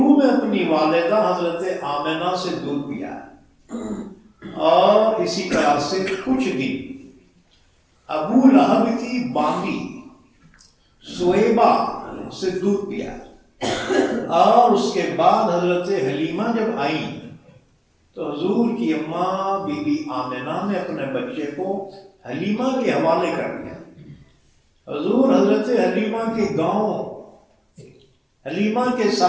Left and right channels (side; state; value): both; identical; correlation 1.00